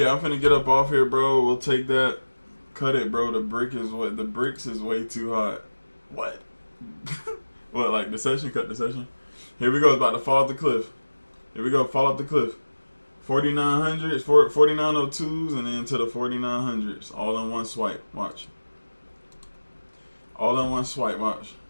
I'm finna get up off here, bro. We'll take that. Cut it, bro. The bricks is way too hot. What? What, like the session? Cut the session? Here we go. It's about to fall off the cliff. Here we go. Fall off the cliff. 4900s, 4902s, and then to the 4900s. All in one swipe. Watch. All in one swipe. Watch.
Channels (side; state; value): both; inverted; correlation -1.00